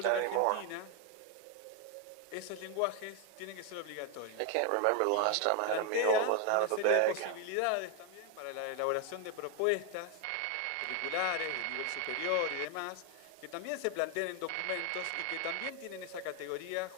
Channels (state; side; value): different; both; correlation 0.01